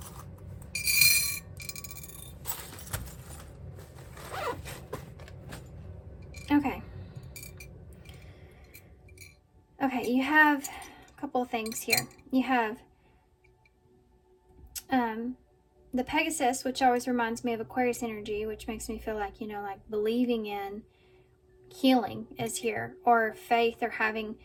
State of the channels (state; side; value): identical; both; correlation 1.00